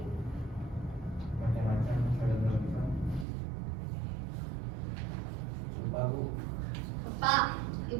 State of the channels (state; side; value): drops out; left; at 3.2 s